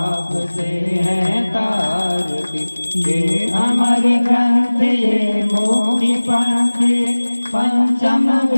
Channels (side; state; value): both; inverted; correlation -1.00